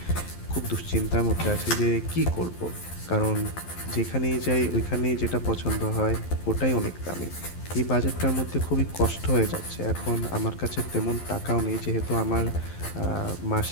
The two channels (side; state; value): right; late; 11 ms